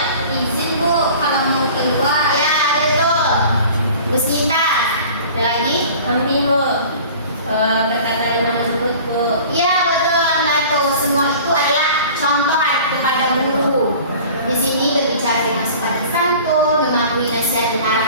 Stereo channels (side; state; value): both; inverted; correlation -0.44